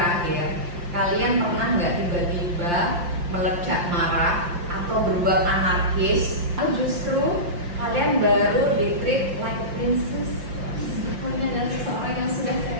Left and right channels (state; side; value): late; left; 5.8 ms